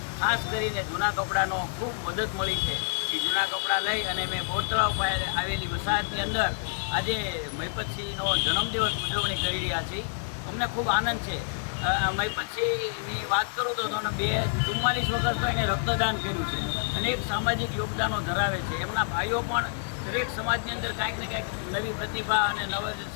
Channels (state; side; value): silent; right; digital silence